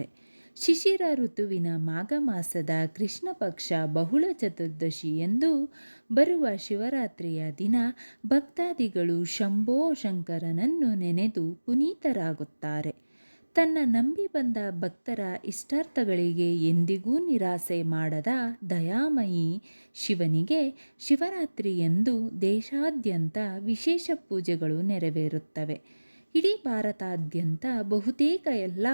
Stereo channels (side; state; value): both; inverted; correlation -1.00